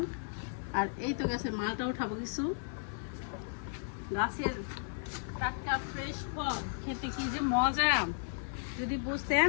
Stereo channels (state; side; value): silent; right; 55 dB below the other